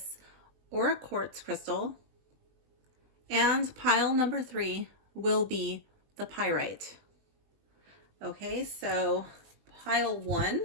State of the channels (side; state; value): left; late; 20 ms